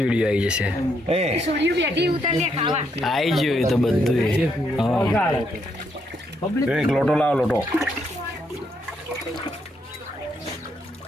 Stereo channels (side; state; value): both; normal; correlation 0.76